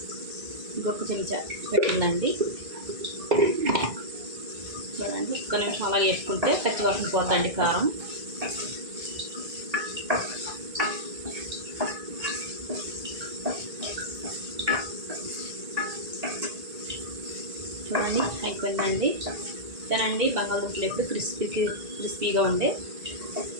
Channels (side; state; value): left; late; 1.9 ms